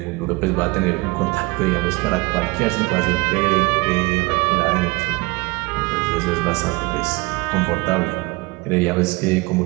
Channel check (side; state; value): left; quieter; 24.7 dB